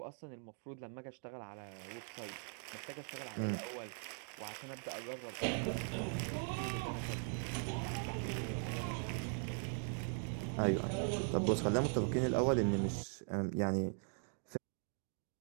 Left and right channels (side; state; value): left; silent; 51 dB below the other